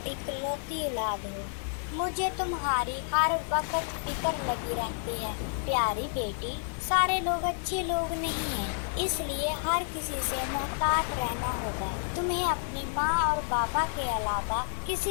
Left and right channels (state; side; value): silent; right; digital silence